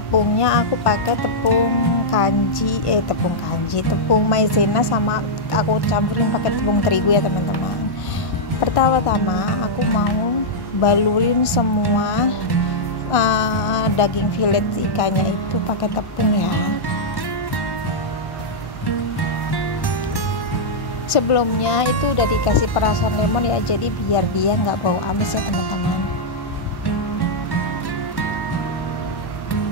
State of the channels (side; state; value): right; late; 1.1 ms